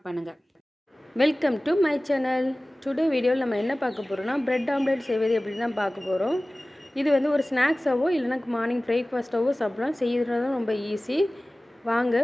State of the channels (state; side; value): normal; both; correlation 0.98